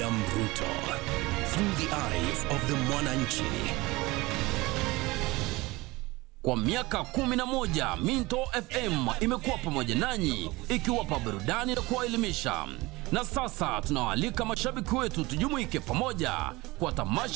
Ruto, through the eyes of the Mwananchi. Kwa miaka 11 Minto FM imekuwa pamoja nanyi ikiwapa burudani na kuwaelimisha. Na sasa tunawaalika mashabiki wetu tujumuike pamoja kwa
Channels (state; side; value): quieter; left; 21.6 dB